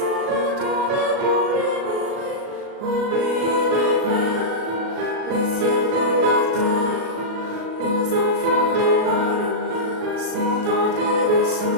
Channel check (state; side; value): late; left; 37 ms